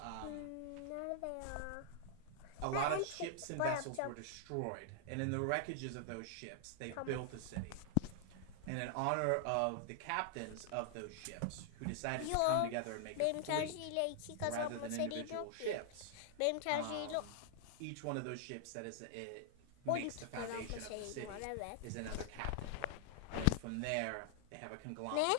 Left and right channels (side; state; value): both; different; correlation 0.00